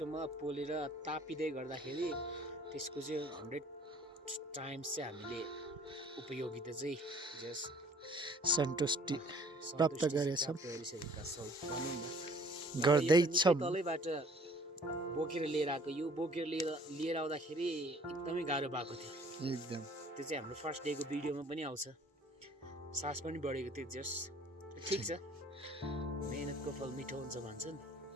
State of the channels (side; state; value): both; normal; correlation 0.54